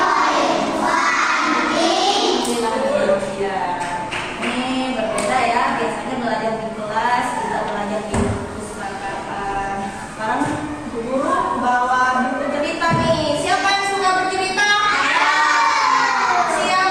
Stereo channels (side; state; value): both; identical; correlation 1.00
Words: wa Alhamdulillah. Ini berbeda ya. Biasanya belajar di kelas, kita belajar di perpustakaan. Sekarang Bu Guru bawa buku cerita nih. Siapa yang suka bercerita?